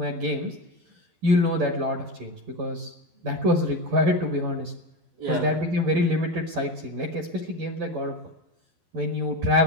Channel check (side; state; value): left; late; 12 ms